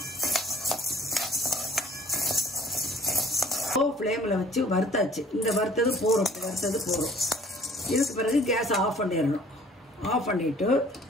லோ ஃப்ளேமில் வச்சு வறுத்தாச்சு. இந்த வறுத்தது போகிறோம். இதுக்கு பிறகு கேஸை ஆஃப் பண்ணிடணும். ஆஃப் பண்ணிவிட்டு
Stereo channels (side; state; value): both; normal; correlation 0.55